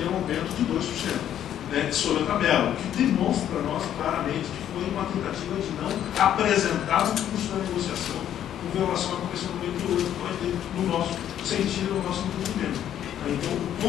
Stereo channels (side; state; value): right; quieter; 10.6 dB